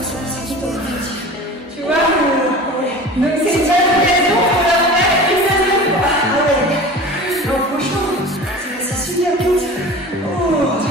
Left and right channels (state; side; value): normal; both; correlation 0.37